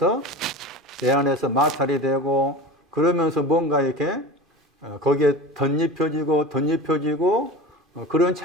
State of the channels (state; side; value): normal; both; correlation 0.32